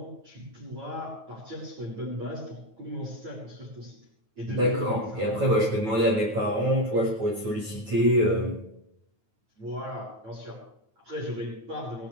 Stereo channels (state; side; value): late; left; 9.2 ms